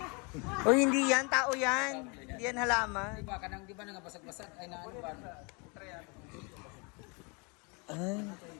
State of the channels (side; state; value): right; quieter; 31.7 dB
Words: O hindi yan, tao yan. Hindi yan halaman. Diba, kanang, di ba, nangabasag-basag? Ay, na ano ba? Ay.